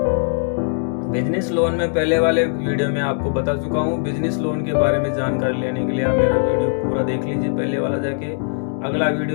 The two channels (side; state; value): right; silent; 65 dB below the other